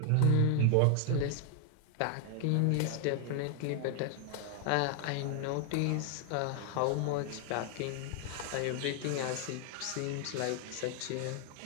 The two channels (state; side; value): different; both; correlation 0.00